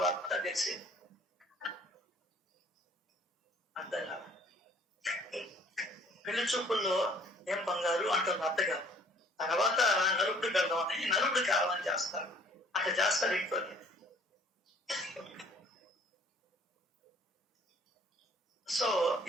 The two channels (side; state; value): both; normal; correlation 0.56